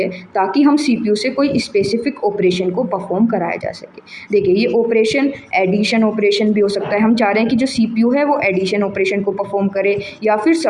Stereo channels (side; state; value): both; identical; correlation 1.00